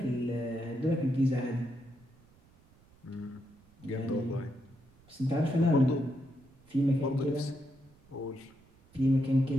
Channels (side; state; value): right; noise; rumble, 28 dB below the sound